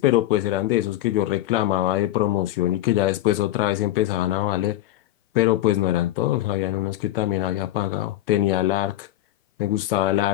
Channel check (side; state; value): right; quieter; 14.7 dB